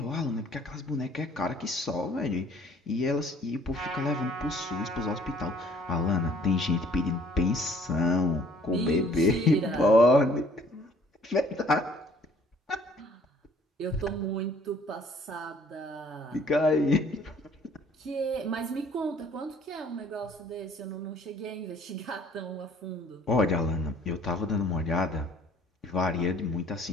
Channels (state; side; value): normal; both; correlation 0.57